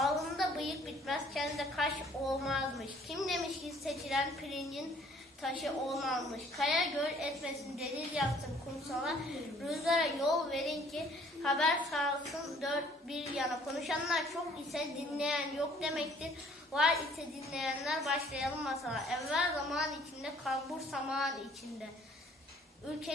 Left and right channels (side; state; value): both; normal; correlation 0.58